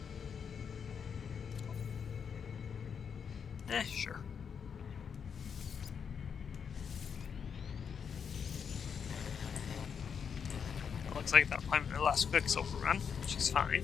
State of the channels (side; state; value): right; quieter; 6.9 dB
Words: Sure. It looks like that might be my last Quicksilver run, which is fine.